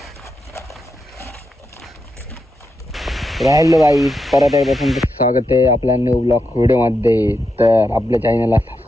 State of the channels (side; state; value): both; normal; correlation 0.85